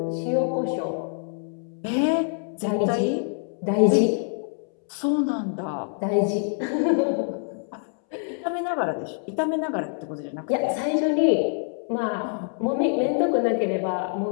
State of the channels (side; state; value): right; silent; 61 dB below the other